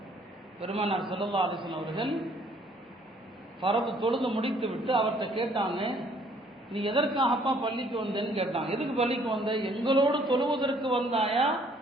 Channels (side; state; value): both; normal; correlation 0.62